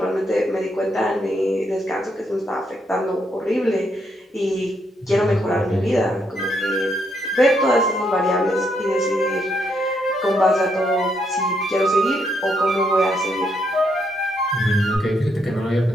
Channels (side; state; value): both; normal; correlation 0.76